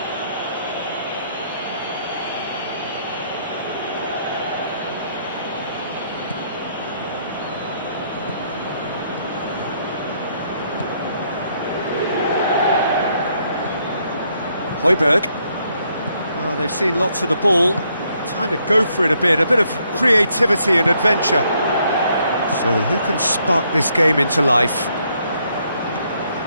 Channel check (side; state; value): both; inverted; correlation -0.72